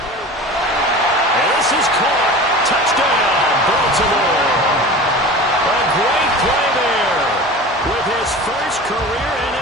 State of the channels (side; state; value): both; normal; correlation 0.36